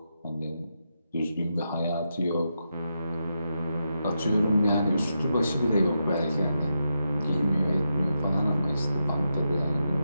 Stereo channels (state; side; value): inverted; both; correlation -0.86